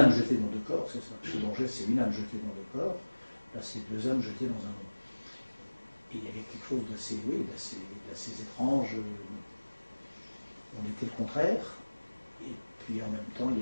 jetée dans deux corps, c'est ça. Chez Borges, c'est une âme jetée dans deux corps. Là, c'est deux âmes jetées dans un nom. Et il y avait quelque chose d'assez étrange. On était le contraire. Et puis en même temps, il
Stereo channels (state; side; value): inverted; both; correlation -1.00